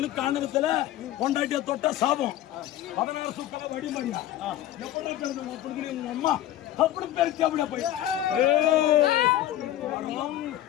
காரணத்துல கொண்டாட்டிய தொட்ட சாபம் 16 சுக்கல வடிமடியா எப்படி பிறந்த அம்மா அப்படி பெருச்சு அப்படியே போய்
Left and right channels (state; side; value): quieter; right; 13.1 dB